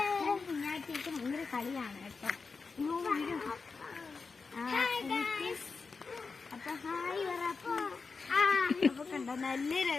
കുഞ്ഞാറ്റേക്ക് ഭയങ്കര കളിയാണ് കേട്ടോ. അപ്പൊ ഹായ് പറ. അപ്പൊ കണ്ടോ നല്ല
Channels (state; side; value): quieter; right; 4.7 dB